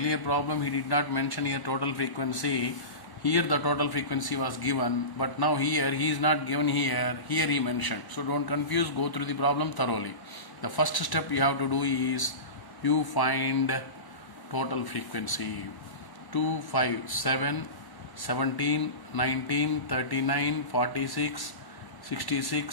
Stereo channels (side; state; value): right; late; 1.0 ms